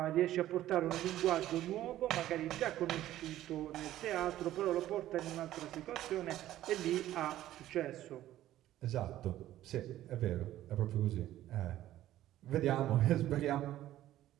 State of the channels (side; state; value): left; quieter; 13.6 dB